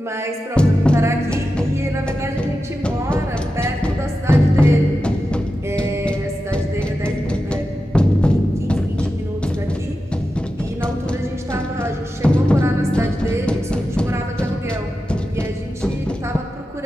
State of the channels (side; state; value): both; normal; correlation 0.91